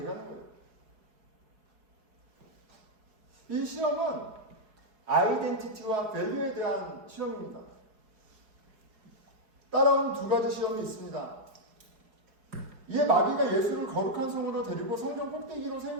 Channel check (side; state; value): left; late; 4.8 ms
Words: 거예요. 이 시험은 아이덴티티와 밸류에 대한 시험입니다. 따라온 두 가지 시험이 있습니다. 이에 마귀가 예수를 거룩한 성으로 데리고 성전 꼭대기로